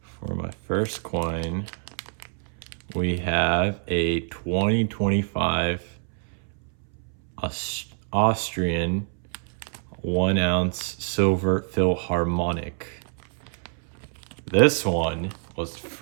For my first coin, we have a 2025 Austrian 1 ounce silver Philharmonic. This one was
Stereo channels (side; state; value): left; silent; 61 dB below the other